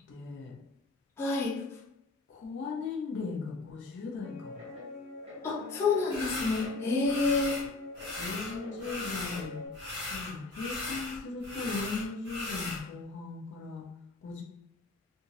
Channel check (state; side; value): quieter; right; 3.3 dB